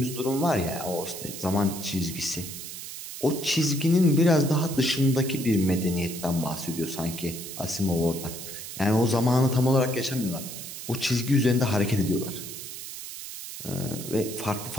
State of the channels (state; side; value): noise; right; hiss, 10 dB below the sound